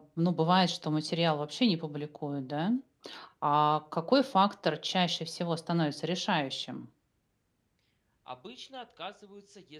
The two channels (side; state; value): both; identical; correlation 1.00